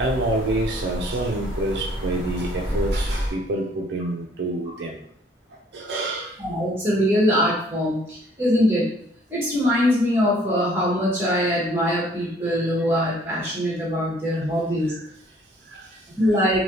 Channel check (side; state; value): both; normal; correlation 0.59